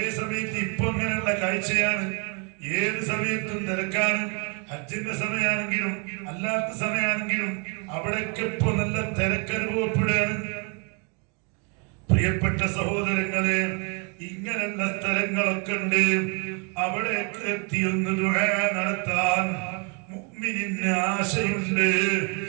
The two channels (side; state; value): left; quieter; 34.2 dB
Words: സമയത്ത് ഇപ്പൊ അങ്ങനെയുള്ള കാഴ്ചയാണ്. ഏത് സമയത്തും തിരക്കാണ്. ഹജ്ജിന്റെ സമയമാണെങ്കിലും അല്ലാത്ത സമയമാണെങ്കിലും അവിടെയൊക്കെ ഇപ്പൊ നല്ല തിരക്കനുഭവപ്പെടുകയാണ്. പ്രിയപ്പെട്ട സഹോദരങ്ങളെ, ഇങ്ങനെയുള്ള സ്ഥലങ്ങളൊക്കെ ഉണ്ട്. അവിടെയൊക്കെ എത്തിയൊന്ന് ദുആ നടത്താൻ മുഅ്മിനിന് ആശയുണ്ട്.